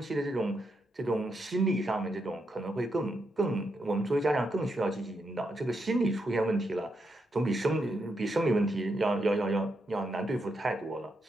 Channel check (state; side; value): normal; both; correlation 0.82